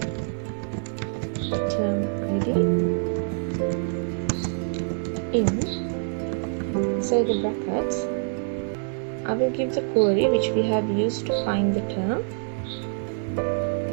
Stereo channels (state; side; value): silent; left; digital silence